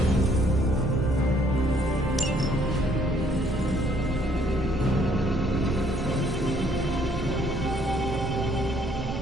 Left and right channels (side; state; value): both; normal; correlation 0.64